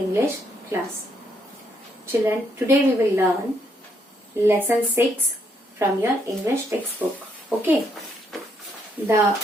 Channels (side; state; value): both; normal; correlation 0.73